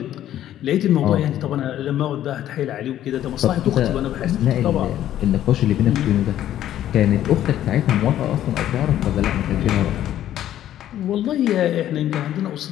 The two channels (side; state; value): right; quieter; 12.0 dB